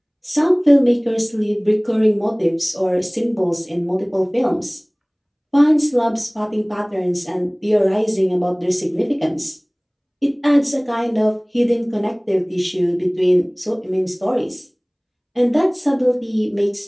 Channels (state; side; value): identical; both; correlation 1.00